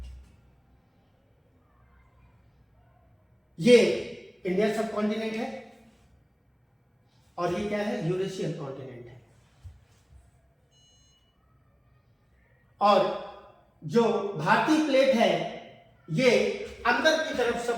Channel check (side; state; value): both; identical; correlation 1.00